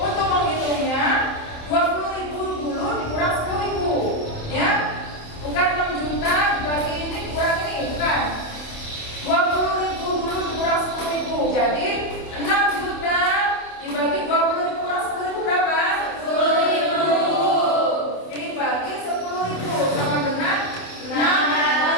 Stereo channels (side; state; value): right; late; 27 ms